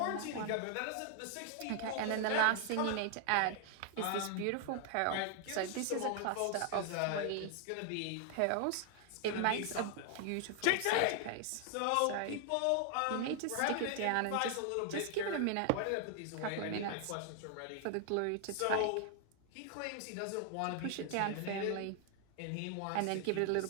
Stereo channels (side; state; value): both; different; correlation 0.00